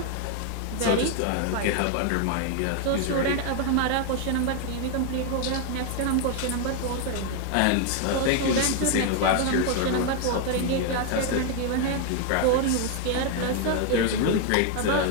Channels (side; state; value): both; different; correlation 0.00